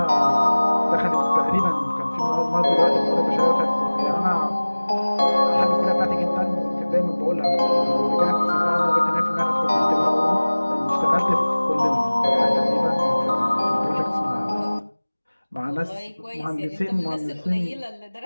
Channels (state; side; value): inverted; both; correlation -1.00